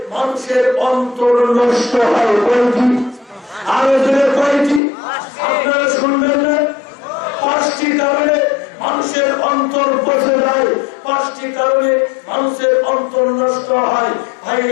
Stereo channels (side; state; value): right; drops out; at 4.8 s